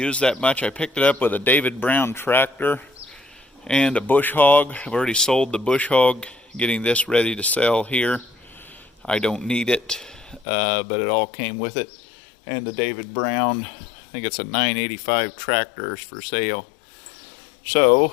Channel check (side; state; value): right; drops out; at 10.5 s